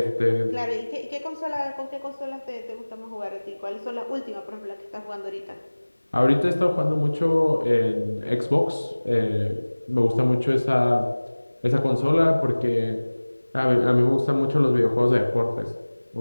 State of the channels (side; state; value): both; inverted; correlation -1.00